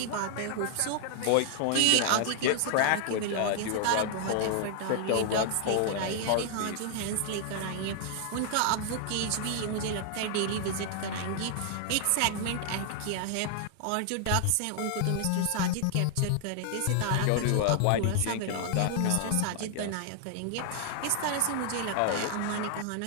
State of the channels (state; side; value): different; both; correlation 0.00